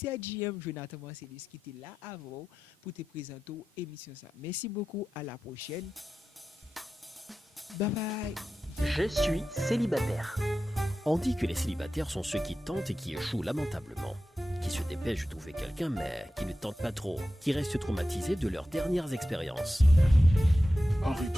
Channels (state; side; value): normal; both; correlation 0.92